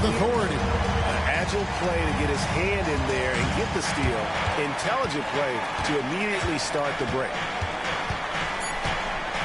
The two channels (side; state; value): both; identical; correlation 1.00